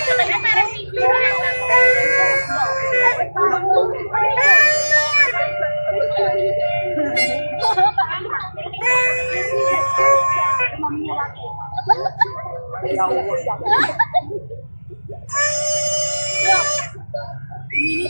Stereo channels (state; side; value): inverted; both; correlation -1.00